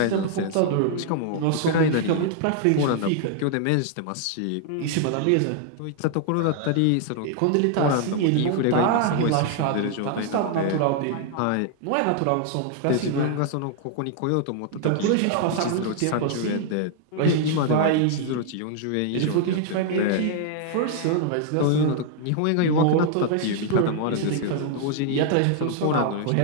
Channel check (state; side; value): different; both; correlation 0.00